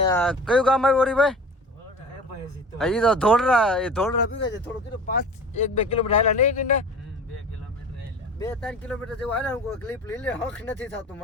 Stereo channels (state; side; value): normal; both; correlation 0.38